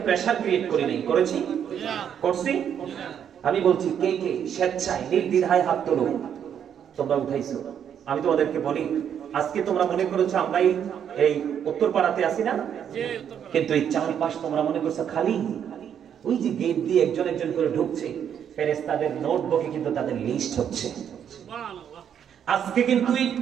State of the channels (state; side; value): quieter; left; 8.7 dB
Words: প্রেসার ক্রিয়েট করি নাই, করেছি? করছি? আমি বলছি কে কে স্বেচ্ছায় নির্দ্বিধায় হাত তোলো। তোমরা উঠাইছো। আমি তোমাদেরকে বলি আজকে তোমরা মনে করেছো আমরা এই উত্তরপাড়াতে আছি না, কিন্তু এই চারপাশ তোমরা মনে করছো খালি। ওই যে গেট দিয়ে একজন একজন করে ঢুকছে, ফেরেশতাদের নোটবুকে কিন্তু তাদের লিস্ট হচ্ছে। আজকে কিন্তু